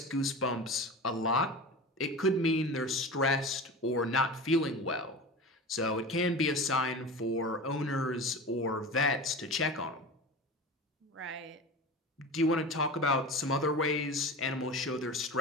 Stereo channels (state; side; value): normal; both; correlation 0.31